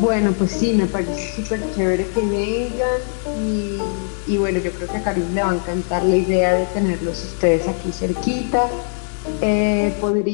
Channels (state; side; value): silent; right; digital silence